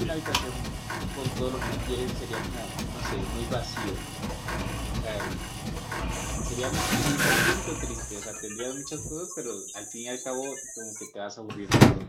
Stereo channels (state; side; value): identical; both; correlation 1.00